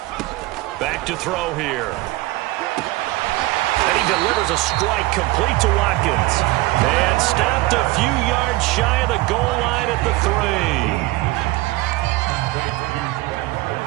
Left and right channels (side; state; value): left; quieter; 19.6 dB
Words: Back to throw here. And he delivers a strike complete to Watkins. And stopped a few yards shy of the goal line at the 3.